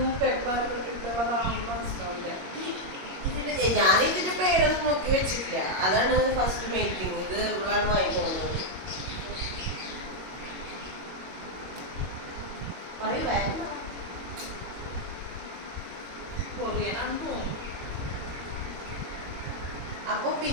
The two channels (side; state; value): left; late; 22 ms